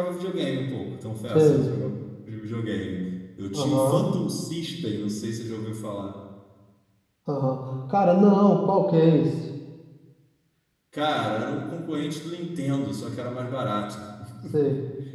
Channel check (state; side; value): identical; both; correlation 1.00